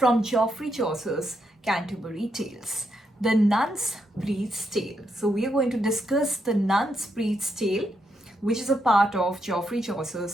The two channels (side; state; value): both; normal; correlation 0.80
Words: Geoffrey Chaucer's Canterbury Tales, the Nun's Priest's Tale. So we are going to discuss the Nun's Priest's Tale, which is a part of Geoffrey